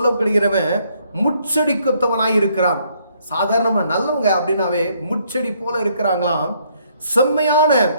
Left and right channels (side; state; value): both; inverted; correlation -0.69